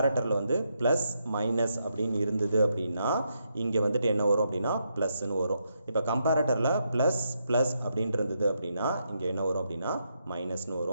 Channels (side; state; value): both; inverted; correlation -0.81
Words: வந்து plus minus அப்படின்னு இருந்தது அப்படின்னா இங்கே வந்துட்டு என்ன வரும் அப்படின்னா ப்ளஸ்ன்னு வரும். இப்போ கம்பேரட்டரில் ப்ளஸ் ப்ளஸ் அப்படின்ட்டு இருந்தது அப்படின்னா இங்கே என்ன வரும் அப்படின்னா மைனஸ்னு